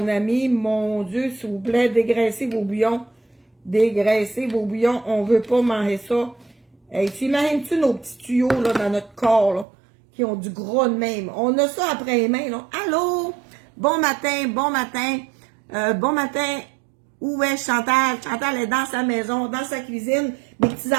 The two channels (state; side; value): drops out; left; at 9.7 s